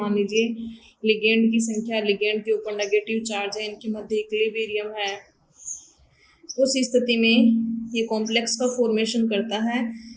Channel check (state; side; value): identical; both; correlation 1.00